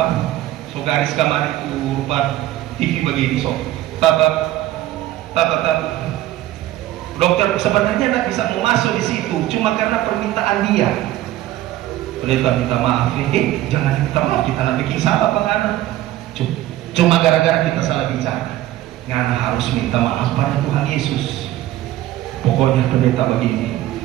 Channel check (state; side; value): quieter; left; 14.5 dB